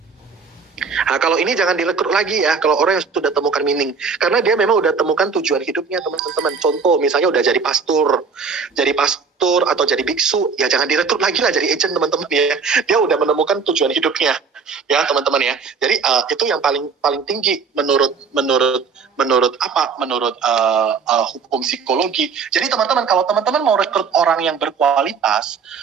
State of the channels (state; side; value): quieter; left; 5.4 dB